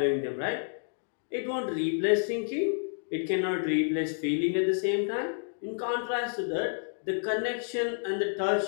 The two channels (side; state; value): right; silent; digital silence